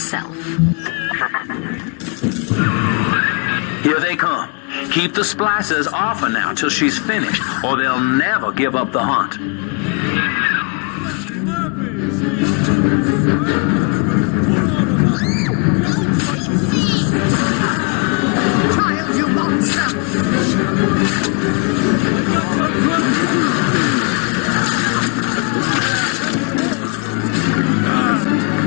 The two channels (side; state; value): right; quieter; 36.0 dB